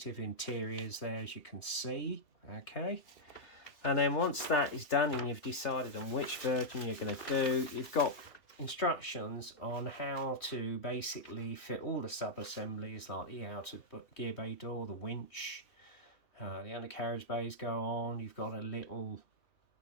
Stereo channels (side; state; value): right; late; 3.0 ms